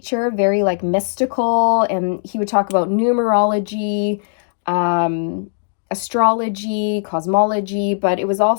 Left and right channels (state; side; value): silent; right; digital silence